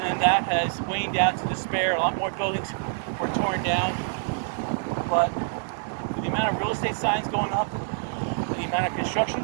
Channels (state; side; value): silent; left; digital silence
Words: that has waned out to despair. A lot more buildings were torn down, but with the amount of real estate signs going up, and the amount of